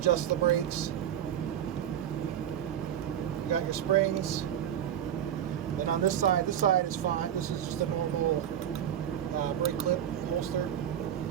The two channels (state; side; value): quieter; left; 10.1 dB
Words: the brakes. You got your springs. Then on this side is fine. This is just a normal brake clip holster.